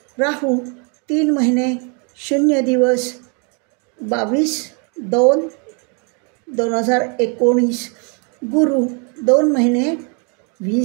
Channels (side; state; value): left; quieter; 36.4 dB